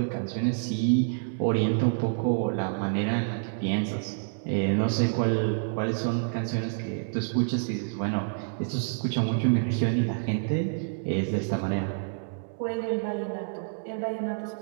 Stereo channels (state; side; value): silent; left; digital silence